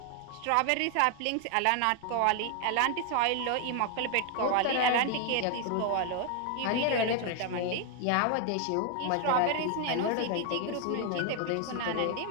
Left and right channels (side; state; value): both; different; correlation 0.00